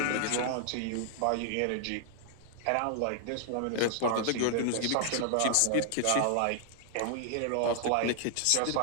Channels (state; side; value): different; both; correlation 0.00